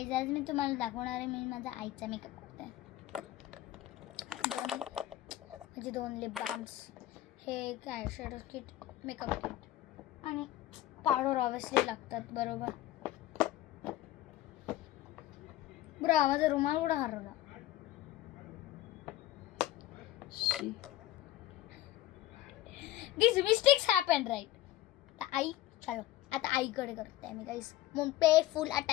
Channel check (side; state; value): right; quieter; 14.8 dB